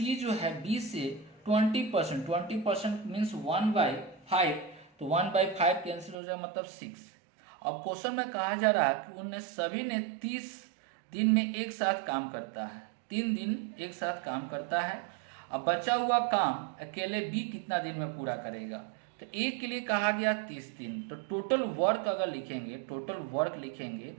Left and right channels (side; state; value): left; drops out; at 6.2 s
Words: जो है बी से 20% मीन्स 1/5, तो 1/5 कैंसिल हो जाएगा मतलब 6। अब क्वेश्चन में कहा जा रहा है कि उनने सभी ने 30 दिन में एक साथ काम करता है, 3 दिन एक साथ काम करता है। अब बचा हुआ काम अकेले बी कितना दिन में पूरा करेगा, तो ए के लिए कहा गया 30 दिन, तो टोटल वर्क अगर लिखेंगे तो